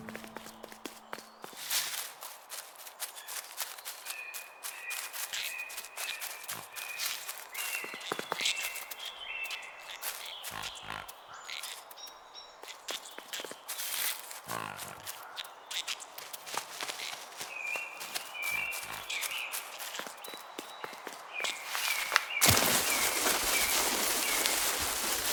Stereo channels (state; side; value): identical; both; correlation 1.00